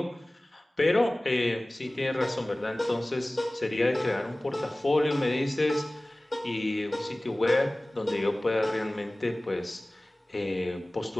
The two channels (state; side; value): normal; both; correlation 0.98